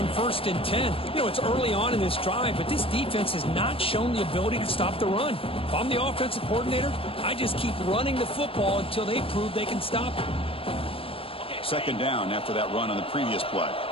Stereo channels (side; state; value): right; late; 0.27 ms